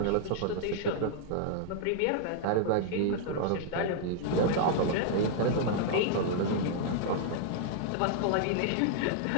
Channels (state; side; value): different; both; correlation -0.01